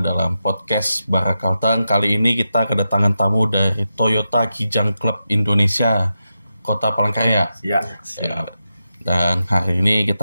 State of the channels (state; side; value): inverted; both; correlation -0.89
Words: podcast Bara Kalteng. Kali ini kita kedatangan tamu dari Toyota Kijang Club Indonesia, Kota Palangkaraya. Ya. Dan hari ini